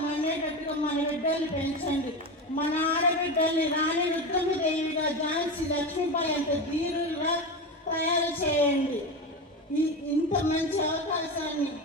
అనేటట్టుగా మన బిడ్డల్ని పెంచండి. మన ఆడబిడ్డల్ని రాణి రుద్రమదేవిగా, ఝాన్సీ లక్ష్మీబాయి అంత ధీరులుగా తయారు చేయండి. ఇంత మంచి అవకాశాన్ని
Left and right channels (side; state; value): both; normal; correlation 0.21